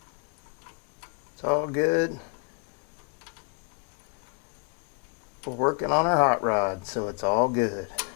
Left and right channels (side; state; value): right; quieter; 33.4 dB